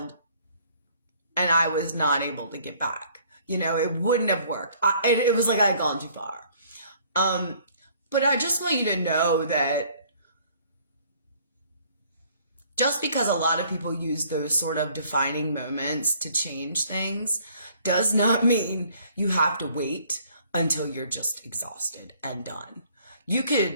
and I was not able to get back. It wouldn't have worked. It was like I had gone too far. But I just want you to know that just because a lot of people use those sort of defining moments to change things does not mean you have to wait until you're just exhausted and done. You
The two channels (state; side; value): inverted; both; correlation -0.59